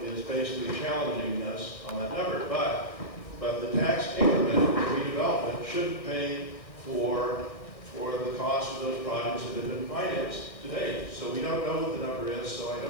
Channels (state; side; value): late; right; 1.6 ms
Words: is basically challenging us on that number. But the tax increment redevelopment should pay for the cost of those projects that have been financed to date. So we don't know what the number is, so I